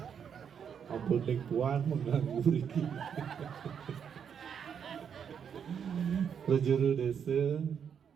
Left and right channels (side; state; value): left; quieter; 7.6 dB